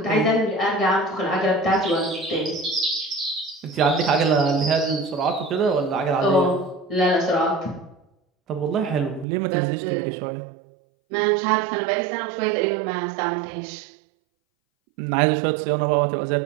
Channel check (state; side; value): drops out; left; at 9.2 s